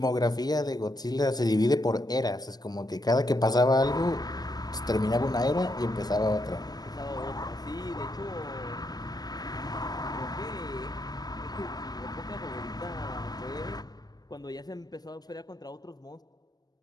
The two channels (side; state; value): right; late; 0.19 ms